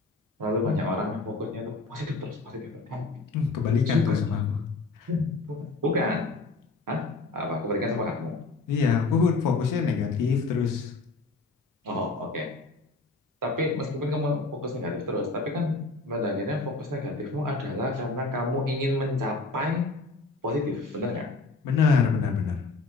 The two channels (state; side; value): quieter; right; 3.6 dB